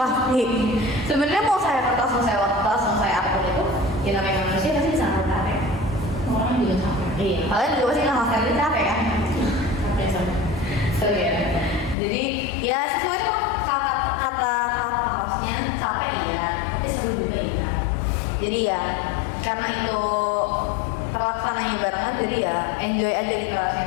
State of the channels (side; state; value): right; drops out; at 12.0 s